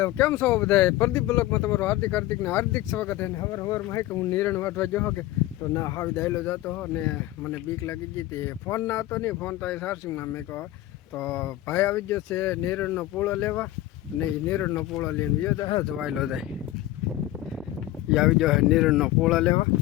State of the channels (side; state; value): right; quieter; 15.6 dB